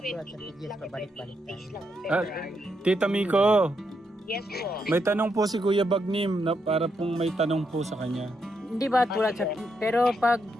sa PGS pabalik-balik tayo? Tita Miko, Yes po. may tanong po si Kuya Bagnim na para pong may tanong po sa kanya. Hindi ba tulad sa... Pero pag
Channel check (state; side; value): normal; both; correlation 0.80